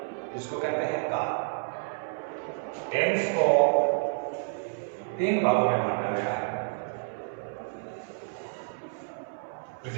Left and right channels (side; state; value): left; silent; 58 dB below the other